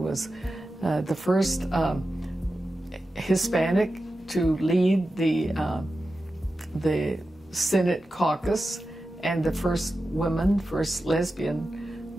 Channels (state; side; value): normal; both; correlation 0.92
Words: the first Hispanic to lead the Senate caucus, and the first lesbian